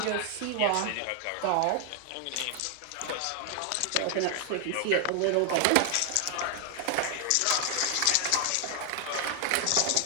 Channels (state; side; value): different; both; correlation 0.00